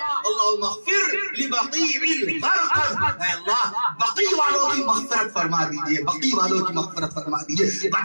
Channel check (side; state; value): both; inverted; correlation -1.00